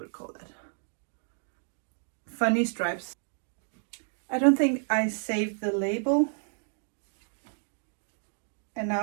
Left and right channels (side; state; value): left; silent; 57 dB below the other